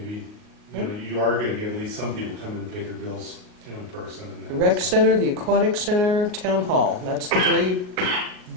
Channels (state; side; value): late; left; 39 ms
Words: you are gonna get at least some people come in and pay their bills, in person. And The rec center, the aquatic center, town hall, that's the three